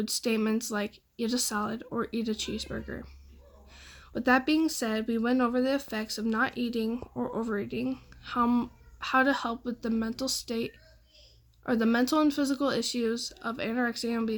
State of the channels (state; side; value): identical; both; correlation 1.00